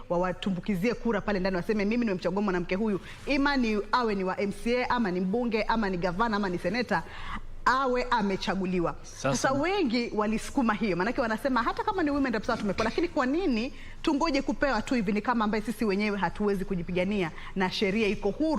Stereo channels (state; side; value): identical; both; correlation 1.00